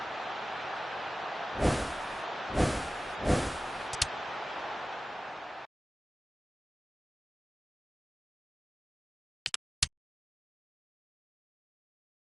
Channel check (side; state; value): both; normal; correlation 0.96